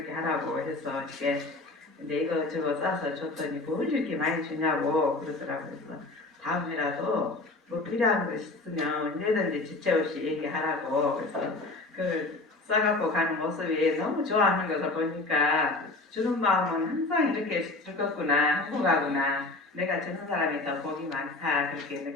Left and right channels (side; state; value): right; quieter; 3.2 dB